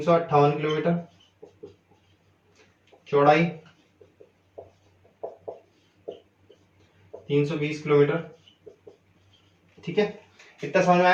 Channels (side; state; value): both; identical; correlation 1.00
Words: किलोमीटर, चौड़ाई 320 किलोमीटर। ठीक है, इतना समझ में